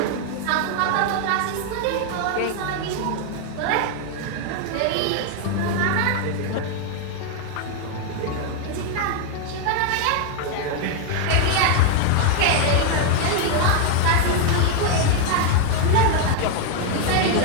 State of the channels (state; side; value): different; both; correlation 0.00